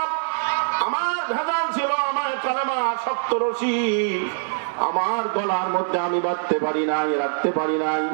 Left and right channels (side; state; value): left; silent; 59 dB below the other